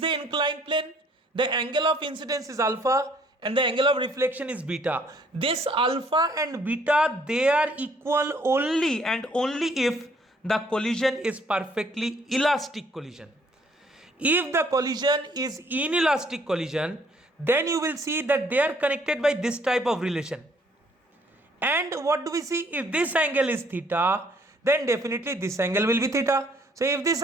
inclined plane, the angle of incidence is alpha and the angle of reflection is beta. This alpha and beta, they are equal only and only if the collision is perfectly elastic collision. If the collision is inelastic collision, then you will see that they are connected by this type of relation. And what do we see? If this angle is theta, then definitely this angle will be theta. So if this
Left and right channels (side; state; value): both; normal; correlation 0.63